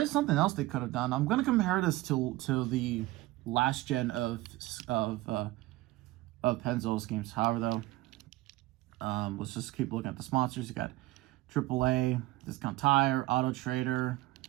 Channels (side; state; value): left; quieter; 18.4 dB